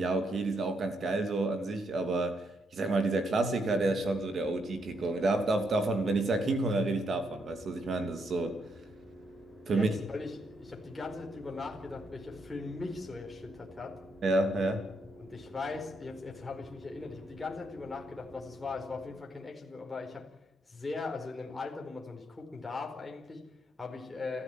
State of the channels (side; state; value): both; normal; correlation 0.77